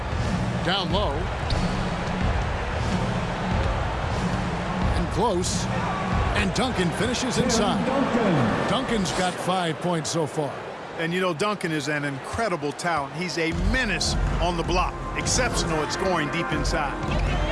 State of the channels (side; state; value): both; identical; correlation 1.00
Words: Down low. And close. And Duncan finishes inside. Duncan's got 5 points so far. And, you know, Duncan is an incredible talent. He's a menace on the block. Exceptional at scoring deep inside.